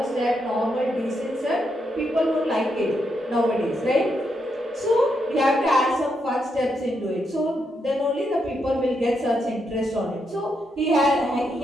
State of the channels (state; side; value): normal; both; correlation 0.81